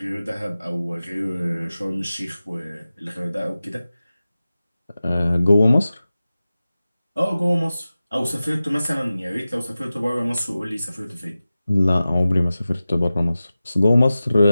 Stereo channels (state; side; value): inverted; both; correlation -0.95